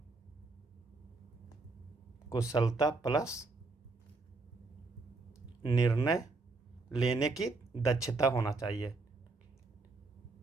कुशलता प्लस निर्णय लेने की दक्षता होना चाहिए।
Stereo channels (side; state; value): left; quieter; 3.6 dB